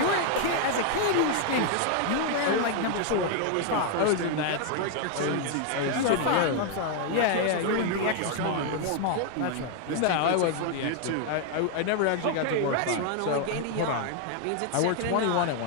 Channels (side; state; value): both; different; correlation 0.00